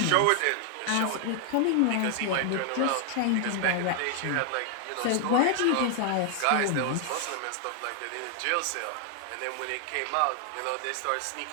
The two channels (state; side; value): different; both; correlation 0.00